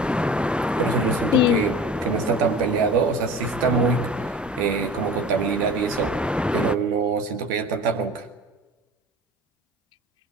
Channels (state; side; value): normal; both; correlation 0.38